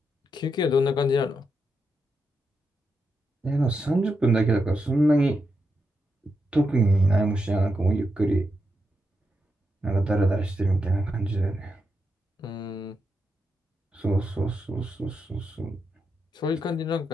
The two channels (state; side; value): normal; both; correlation 0.84